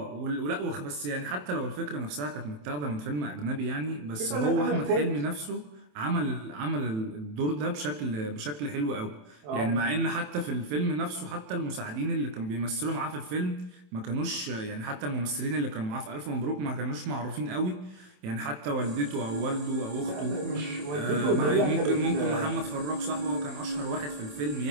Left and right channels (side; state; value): left; late; 27 ms